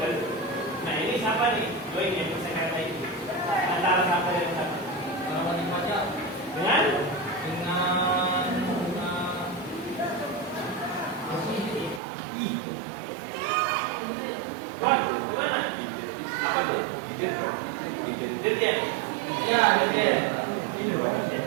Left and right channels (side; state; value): left; drops out; at 12.0 s